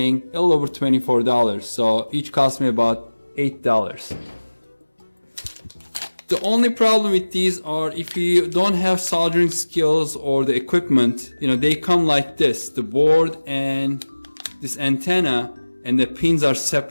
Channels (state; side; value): inverted; both; correlation -1.00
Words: a little over $24. So each cost me about $8. The only problem with these are if you don't have soldering skills or the equipment, they come like this, the board and this antenna, and the pins are